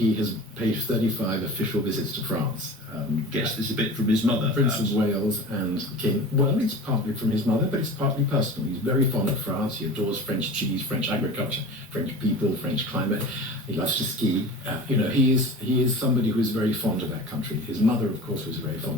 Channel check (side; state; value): both; normal; correlation 0.36